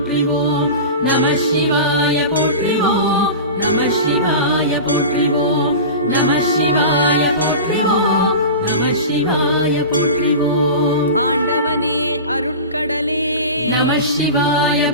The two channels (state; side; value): inverted; both; correlation -0.30